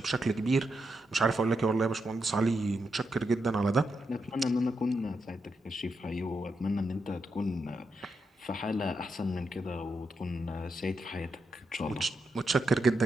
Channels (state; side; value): normal; both; correlation 0.84